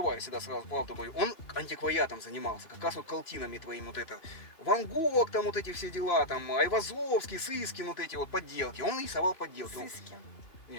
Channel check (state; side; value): late; right; 3.1 ms